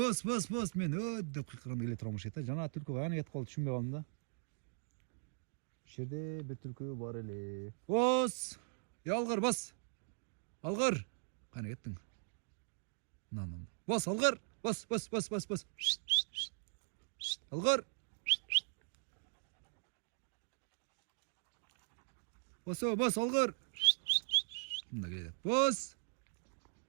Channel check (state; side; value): silent; left; digital silence